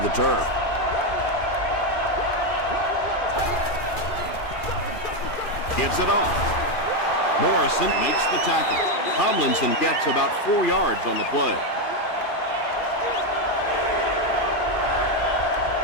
turf. Gives it off. Morrison makes the tackle. Tomlinson gets about 4 yards on the play.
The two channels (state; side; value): late; right; 2.3 ms